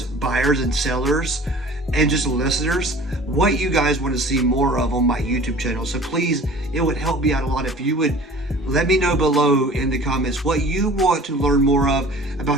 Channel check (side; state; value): both; normal; correlation 0.45